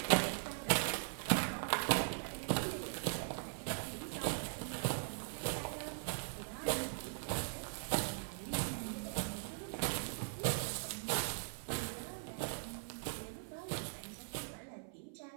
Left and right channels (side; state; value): left; silent; 51 dB below the other